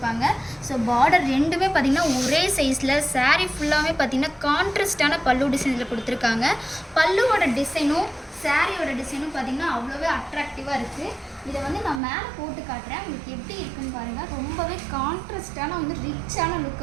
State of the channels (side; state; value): left; drops out; at 12.0 s